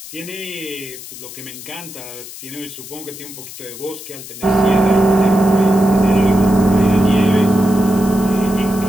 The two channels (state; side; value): noise; left; hiss, 14 dB below the sound